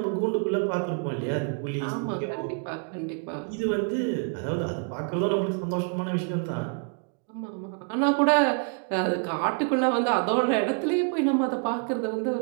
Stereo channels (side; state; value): left; quieter; 39.5 dB